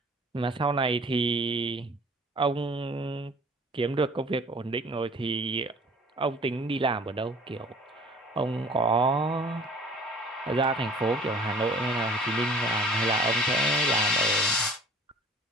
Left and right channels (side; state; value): both; normal; correlation 0.49